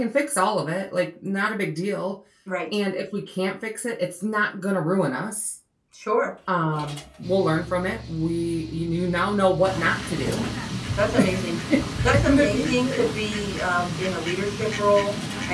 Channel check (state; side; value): identical; both; correlation 1.00